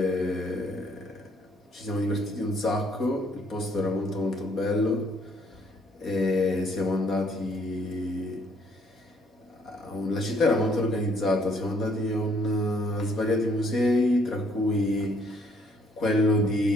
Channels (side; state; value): both; normal; correlation 0.66